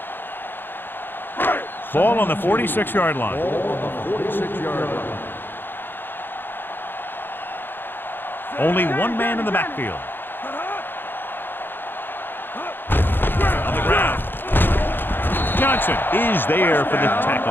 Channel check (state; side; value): late; right; 0.098 ms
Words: Ball on the 46-yard line. Ball on the 46-yard line. Only one man in the backfield. On the ground. Johnson is there for the